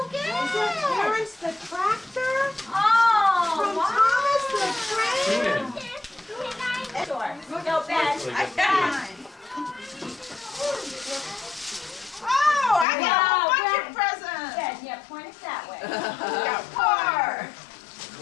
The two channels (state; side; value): drops out; right; at 12.9 s